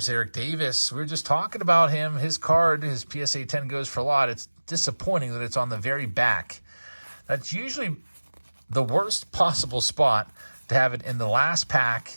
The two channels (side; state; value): both; inverted; correlation -1.00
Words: Eric Davis. We were just talking about him. His card, his PSA 10 goes for a lot. It's disappointing that it's on the very back. That's usually the worst possible spot to have it in the last